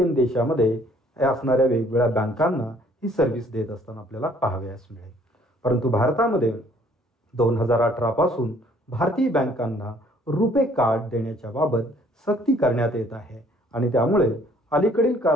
देशामध्ये असणाऱ्या वेगवेगळ्या बँकांना ही सर्व्हिस देत असताना आपल्याला पाहावयास मिळेल. परंतु भारतामध्ये 2018 पासून भारतीय बँकांना रुपे कार्ड देण्याच्या बाबत सक्ती करण्यात येत आहे आणि त्यामुळे अलीकडील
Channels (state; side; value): normal; both; correlation 0.60